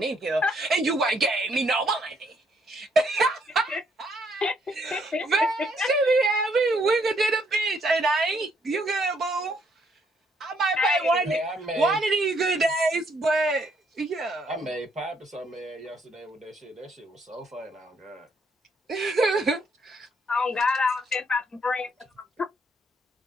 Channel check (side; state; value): both; normal; correlation 0.70